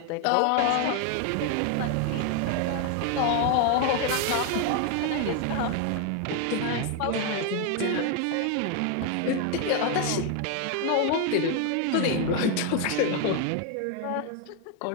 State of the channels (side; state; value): both; different; correlation 0.01